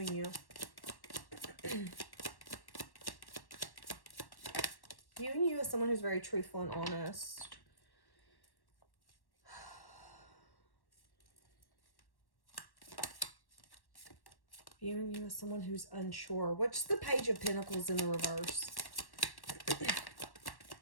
you? Viewing you as someone who's very truthful and honest. Viewing you as someone who's unsure. What's the Page of Pentacles in the reverse?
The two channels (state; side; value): late; right; 1.1 ms